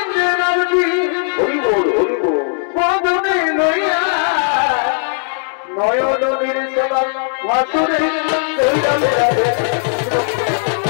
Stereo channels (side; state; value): right; silent; digital silence